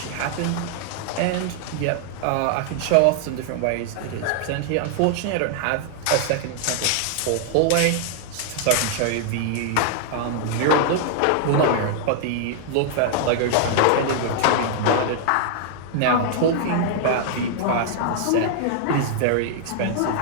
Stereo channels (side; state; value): both; different; correlation 0.00